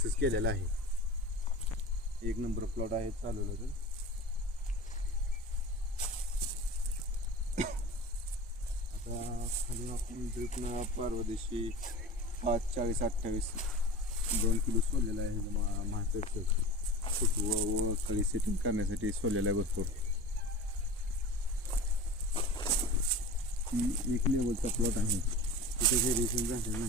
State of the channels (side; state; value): both; normal; correlation 0.35